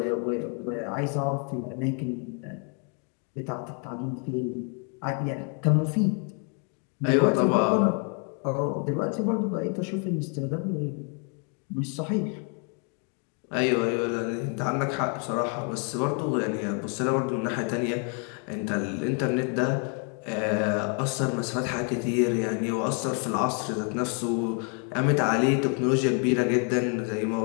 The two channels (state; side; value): quieter; right; 39.5 dB